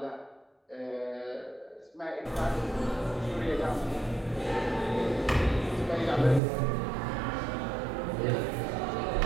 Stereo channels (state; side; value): drops out; left; at 6.4 s